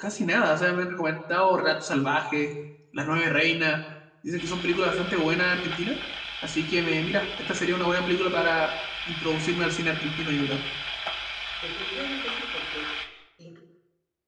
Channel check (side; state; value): both; identical; correlation 1.00